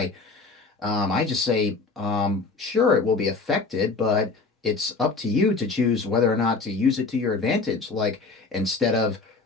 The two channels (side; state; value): right; quieter; 4.0 dB